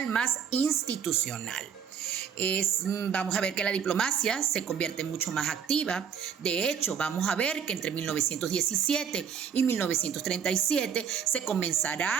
más institucional. Vamos a ver que la diplomacia se convierte mucho más activa. De hecho, vamos a ver que entre 1917 y 1937 se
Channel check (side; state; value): left; quieter; 7.5 dB